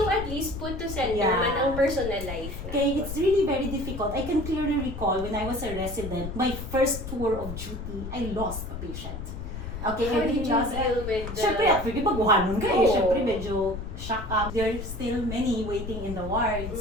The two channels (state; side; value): noise; left; rumble, 8 dB below the sound